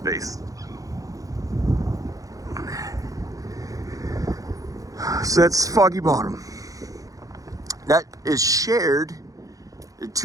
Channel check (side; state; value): left; late; 0.17 ms